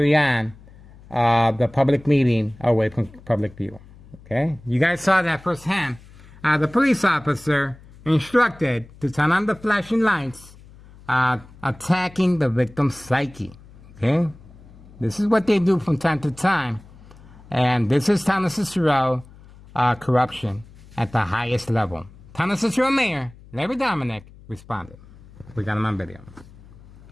on the public meeting away from public view. Okay? You guys saw that firsthand. The police officer instructed to turn on the flashing lights, attacking the victim's psyche. Okay? This is what they do from time to time. And this is Town of Cicero corruption at the highest level. Town of Cicero Mayor, Larry Dominic, responded. We got him on video.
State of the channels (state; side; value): noise; left; hum, 22 dB below the sound